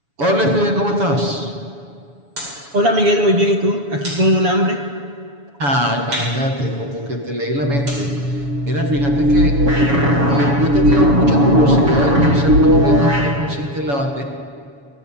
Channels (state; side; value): late; left; 7.1 ms